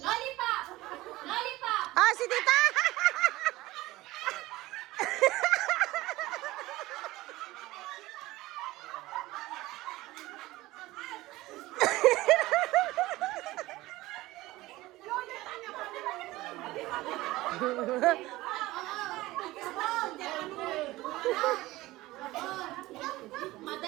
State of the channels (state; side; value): quieter; left; 18.4 dB